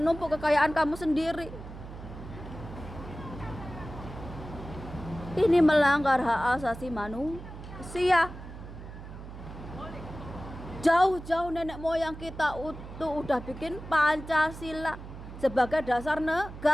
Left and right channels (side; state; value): right; noise; hum, 13 dB below the sound